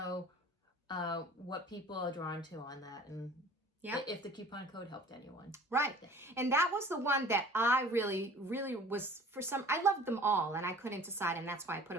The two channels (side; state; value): both; normal; correlation 0.47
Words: what people are drawn to on that, and if the coupon code helped anyone. Right. And that was the one that I really was, I loved them all and I couldn't decide, and that's why I put